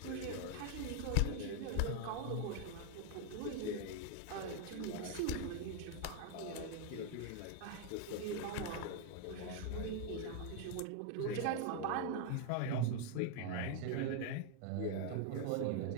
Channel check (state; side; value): different; both; correlation 0.00